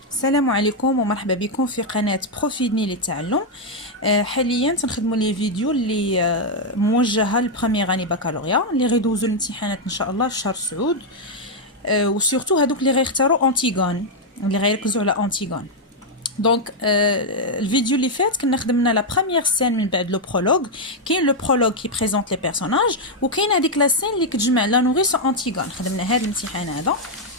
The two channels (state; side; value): normal; both; correlation -0.01